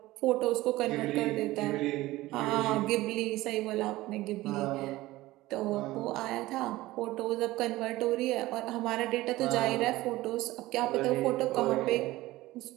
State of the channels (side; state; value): left; quieter; 17.8 dB